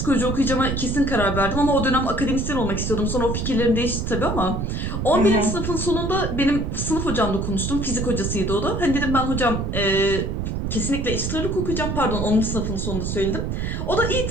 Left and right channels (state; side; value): noise; right; rumble, 2 dB below the sound